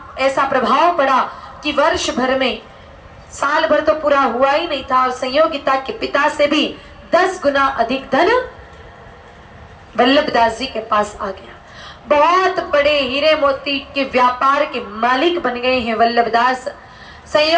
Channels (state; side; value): identical; both; correlation 1.00